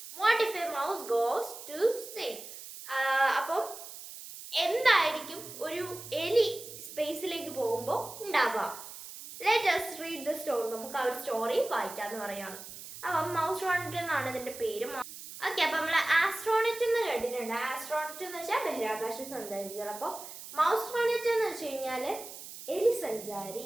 What if a mouse goes to space? അപ്പം എന്തായിരിക്കും ഒരു എലി സ്പേസിലേക്ക് പോകുമ്പോൾ ഉണ്ടാവുക? Let us read the story. നമുക്ക് ആ ഒരു സ്റ്റോറി വായിക്കാമെന്ന് പറയാണ്. അപ്പം മൗസ്ട്രോണറ്റ് എന്നാണ് ഇതിൻ്റെ പേര്. ഓക്കെ, അപ്പം നമ്മൾ ആസ്ട്രോണറ്റ് എന്ന് കേട്ടിട്ടുണ്ട്. ആസ്ട്രോണറ്റ് എന്ന് വെച്ചാൽ ബഹിരാകാശ സഞ്ചാരികൾ. അപ്പോൾ മൗസ്ട്രോണറ്റ് എന്ന് വെച്ച് കഴിഞ്ഞാൽ എലി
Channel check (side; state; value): right; noise; hiss, 13 dB below the sound